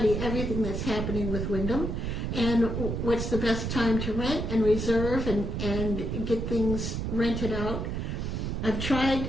everything that's happening with Wyndham and what's the best time to rent and reserve and get things rented out. I've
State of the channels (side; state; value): right; noise; rumble, 2 dB below the sound